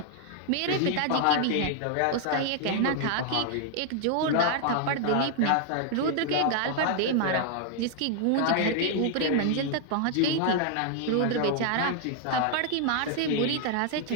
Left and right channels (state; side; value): different; both; correlation 0.00